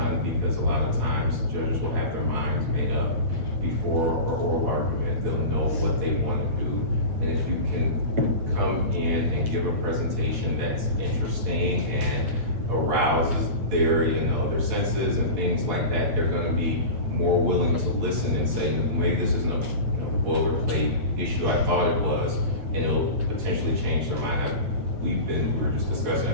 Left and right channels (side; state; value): left; late; 8.8 ms